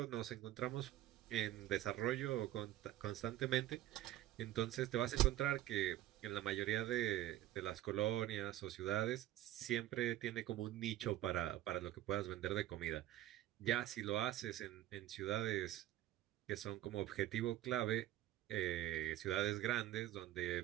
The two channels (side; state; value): left; quieter; 13.9 dB